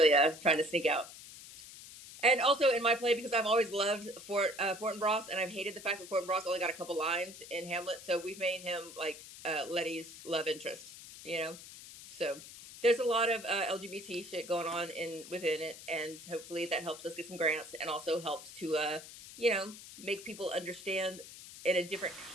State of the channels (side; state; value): left; noise; hiss, 15 dB below the sound